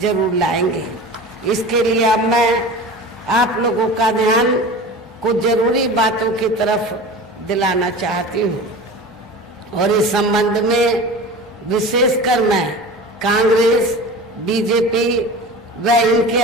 जरूर लाएंगे। इसके लिए अब मैं आप लोगों का ध्यान कुछ जरूरी बातों की तरफ दिलाना चाहती हूँ और इस संबंध में विशेषकर मैं कांग्रेस, बीजेपी व इनके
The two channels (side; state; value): both; normal; correlation 0.35